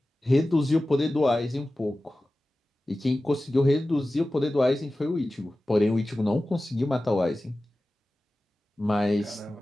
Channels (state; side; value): normal; both; correlation 0.95